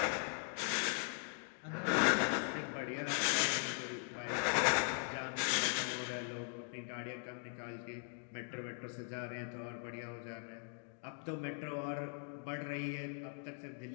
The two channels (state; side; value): silent; right; 51 dB below the other